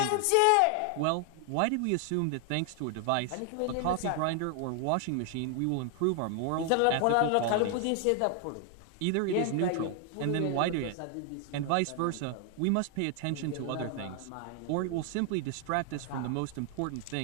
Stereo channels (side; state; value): both; different; correlation 0.00